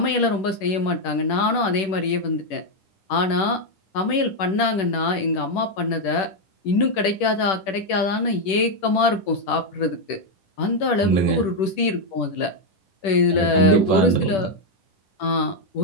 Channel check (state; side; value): late; right; 10 ms